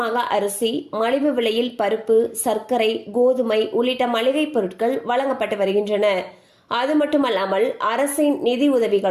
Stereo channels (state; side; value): identical; both; correlation 1.00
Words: அரிசி, மலிவு விலையில் பருப்பு, சர்க்கரை, கோதுமை உள்ளிட்ட மளிகை பொருட்கள் வழங்கப்பட்டு வருகின்றன. அது மட்டுமல்லாமல் அரசின் நிதி